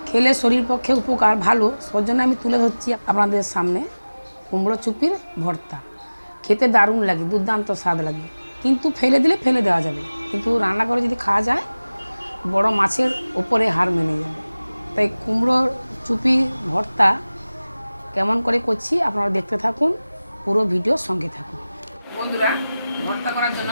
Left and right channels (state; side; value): inverted; both; correlation -0.98